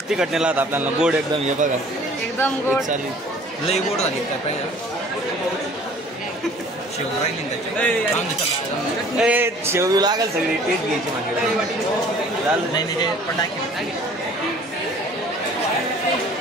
तिखट नेला होता आपल्याला. गोड एकदम. हे बघा एकदम गोड चालेल. लई गोड झाली काय पाहिजे. शेव राहिली शेव लागेल सगळी टेस्ट घ्यायची माझ्याकडे. झालं नाही नाही पण टाकी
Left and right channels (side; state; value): both; normal; correlation 0.51